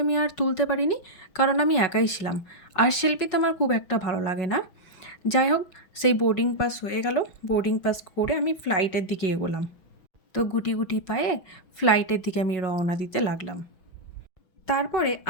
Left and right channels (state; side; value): late; right; 5.4 ms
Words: আমি আর তুলতে পারিনি, কারণ আমি একাই ছিলাম, আর সেলফিতে আমার খুব একটা ভালো লাগে না। যাই হোক, সেই বোর্ডিং পাস হয়ে গেল। বোর্ডিং পাস করে আমি ফ্লাইটের দিকে এগোলাম। তো গুটি গুটি পায়ে ফ্লাইটের দিকে আমি রওনা দিতে লাগলাম। তারপরে